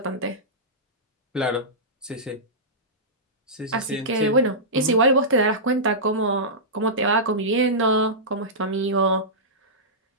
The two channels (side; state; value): both; normal; correlation -0.16